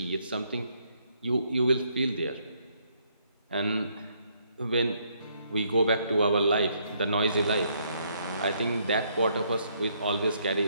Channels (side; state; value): both; inverted; correlation -0.71